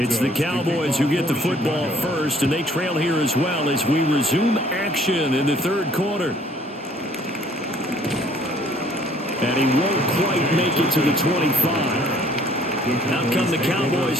the Cowboys who get the football first, and they trail here as well as we resume action in the third quarter. And he won't quite make it to the 25. Out come the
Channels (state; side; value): normal; both; correlation 0.59